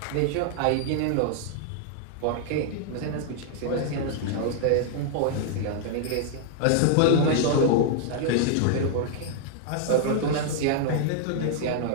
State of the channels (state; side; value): different; both; correlation -0.01